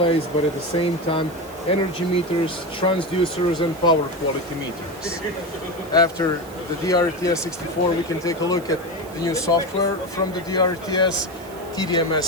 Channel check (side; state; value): right; noise; hiss, 21 dB below the sound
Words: but at the same time energy meters, transducers and power quality meters. After the DRTS 64 we can take a look at the new software from the DRTS,